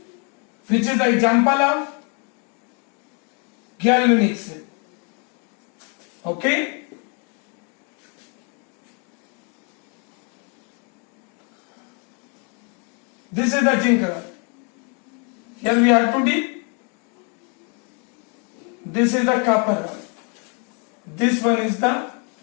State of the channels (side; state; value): right; quieter; 36.7 dB